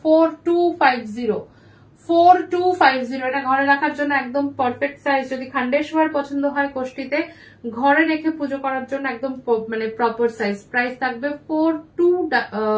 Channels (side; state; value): both; identical; correlation 1.00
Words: 4250। এটা ঘরে রাখার জন্য একদম পারফেক্ট সাইজ। যদি খন্ডেশ্বর পছন্দ হয় কোষ্ঠীতে ঘরে রেখে পুজো করার জন্য একদম মানে প্রপার সাইজ। প্রাইস থাকবে